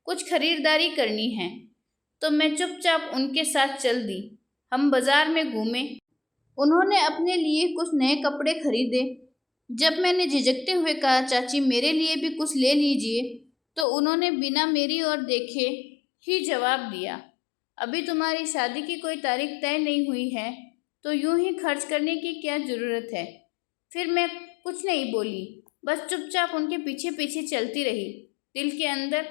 कुछ खरीदारी करनी है। तो मैं चुपचाप उनके साथ चल दी। हम बाजार में घूमे। उन्होंने अपने लिए कुछ नए कपड़े खरीदे। जब मैंने झिझकते हुए कहा, चाची मेरे लिए भी कुछ ले लीजिए, तो उन्होंने बिना मेरी ओर देखे ही जवाब दिया, अभी तुम्हारी शादी की कोई तारीख तय नहीं हुई है, तो यूं ही खर्च करने की क्या ज़रूरत है। फिर मैं कुछ नहीं बोली, बस चुपचाप उनके पीछे पीछे चलती रही। दिल के अंदर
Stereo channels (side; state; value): right; drops out; at 13.9 s